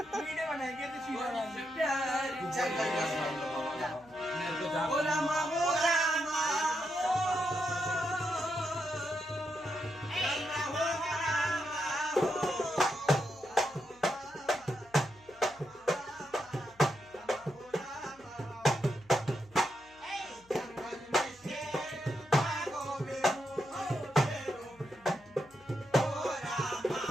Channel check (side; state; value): left; noise; hum, 28 dB below the sound